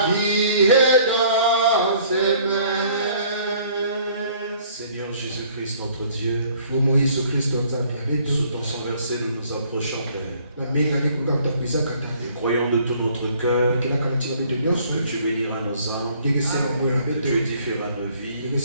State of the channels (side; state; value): both; inverted; correlation -0.58